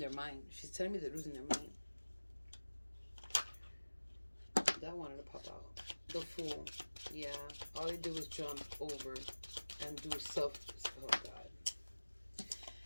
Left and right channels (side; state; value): both; inverted; correlation -1.00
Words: mind. She's telling me they're losing their mind. That wanted to pop out. The Fool. Yeah. All they did was jump over and do self... Oh, God.